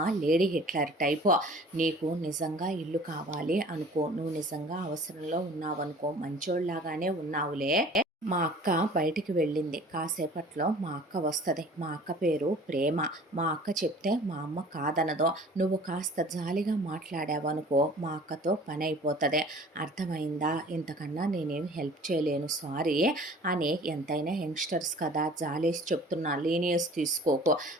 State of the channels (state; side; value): normal; both; correlation 0.47